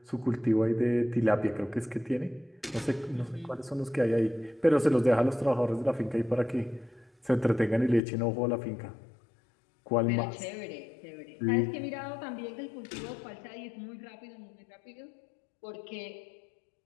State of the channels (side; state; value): right; drops out; at 8.0 s